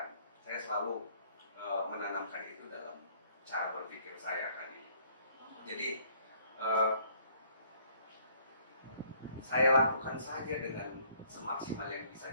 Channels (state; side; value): inverted; both; correlation -0.62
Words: Saya selalu menanamkan itu dalam cara berpikir saya kan ini. Jadi saya lakukan saja dengan semaksimal yang